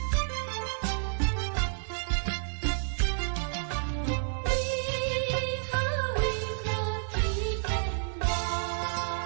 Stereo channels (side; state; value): left; silent; 58 dB below the other